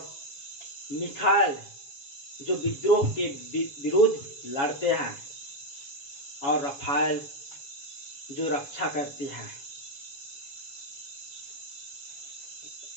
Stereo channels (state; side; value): late; right; 7.2 ms